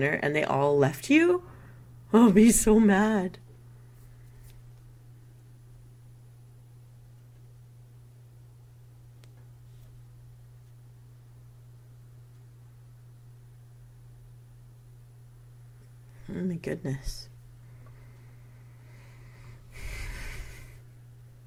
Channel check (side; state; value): both; identical; correlation 1.00